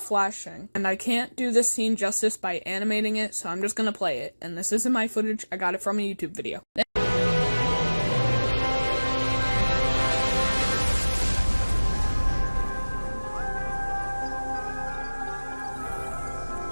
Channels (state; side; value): inverted; both; correlation -1.00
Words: And I can't do this scene justice by animating it, so I'm just gonna play it. And this isn't my footage, I got it from a YouTube video.